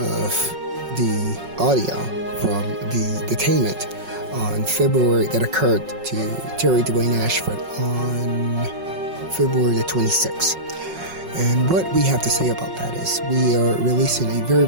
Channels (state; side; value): late; left; 5.4 ms